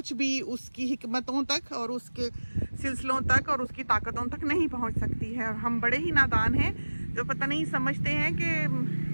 भी उसकी हिकमतों तक और उसके सिलसिलों तक और उसकी ताकतों तक नहीं पहुंच सकती है। और हम बड़े ही नादान हैं जो पता नहीं समझते हैं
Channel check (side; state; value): both; inverted; correlation -1.00